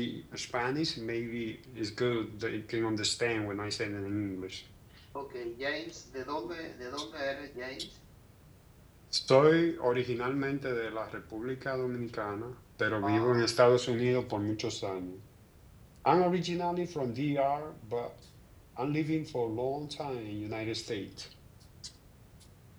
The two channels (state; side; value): identical; both; correlation 1.00